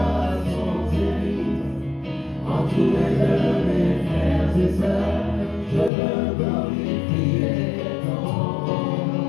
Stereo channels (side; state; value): right; drops out; at 5.9 s